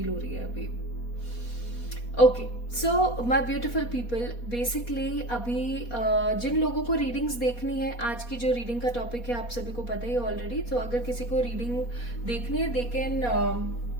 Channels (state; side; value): late; right; 4.2 ms